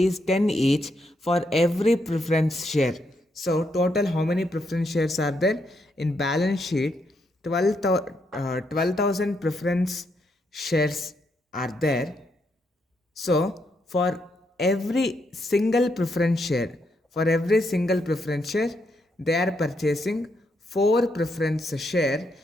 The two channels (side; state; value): both; normal; correlation 0.78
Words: 10 each for every preference share. So total how many preference shares are there? In balance sheet 12,000 preference shares are there. So for every single preference share, they are purchasing 4 preference share